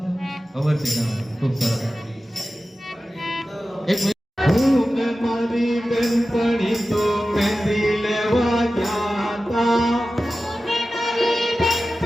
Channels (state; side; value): normal; both; correlation 0.94